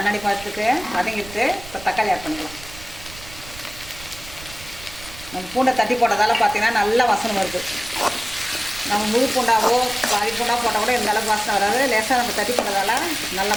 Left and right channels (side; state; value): right; noise; rumble, 16 dB below the sound